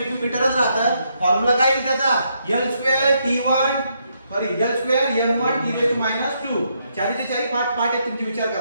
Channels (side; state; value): both; inverted; correlation -0.77